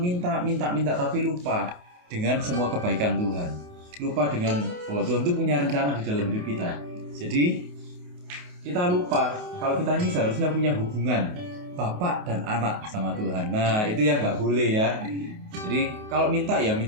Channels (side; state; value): left; late; 28 ms